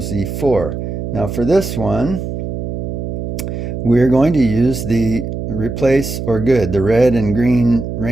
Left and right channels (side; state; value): right; noise; hum, 5 dB below the sound